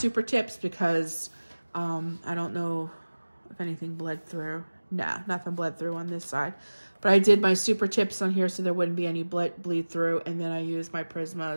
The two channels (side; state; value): both; inverted; correlation -1.00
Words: tips because I don't know if anything bled through. Nah, nothing bled through on this side. But I did my super tips on here so there wouldn't be any bleed through. And then I used my